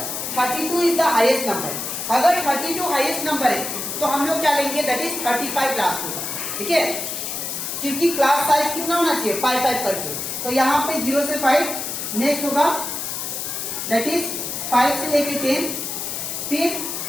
32 is the highest number. अगर 32 हाईएस्ट नंबर है तो हम लोग क्या लेंगे, दैट इज 35 लास्ट होगा, ठीक है, क्योंकि क्लास साइज कितना होना चाहिए, 5 करके। तो यहाँ पे 0 से 5, नेक्स्ट होगा दैट इज 5 से लेके 10, फिर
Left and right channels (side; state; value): left; noise; hiss, 4 dB below the sound